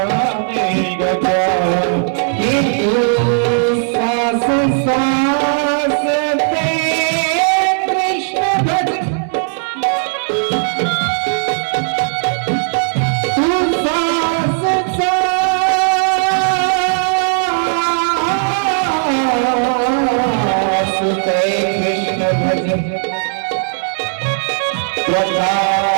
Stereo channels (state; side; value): silent; left; 67 dB below the other